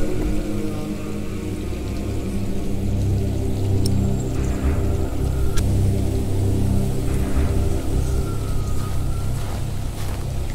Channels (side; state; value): both; identical; correlation 1.00